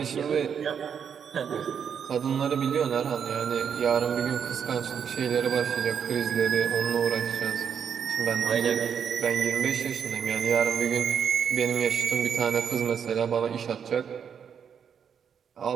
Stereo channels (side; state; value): left; quieter; 7.5 dB